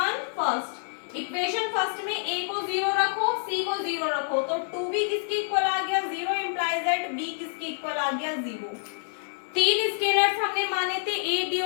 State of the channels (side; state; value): right; silent; 60 dB below the other